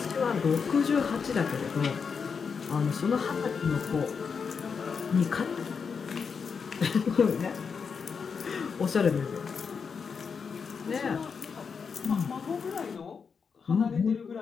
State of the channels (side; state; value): right; quieter; 5.9 dB